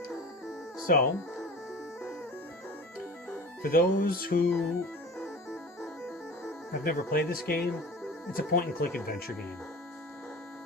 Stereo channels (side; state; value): both; normal; correlation 0.37